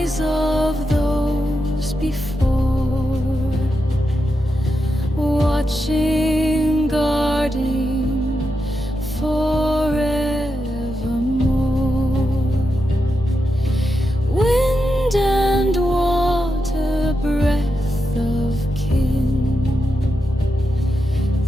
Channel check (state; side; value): normal; both; correlation 0.87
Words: of those before, watching, guarding forevermore.